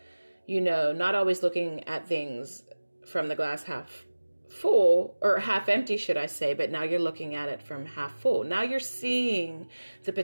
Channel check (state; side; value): inverted; both; correlation -1.00